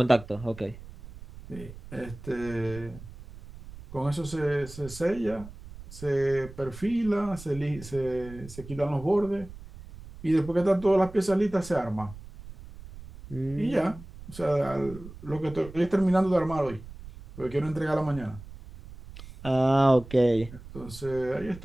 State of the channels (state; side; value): noise; right; rumble, 16 dB below the sound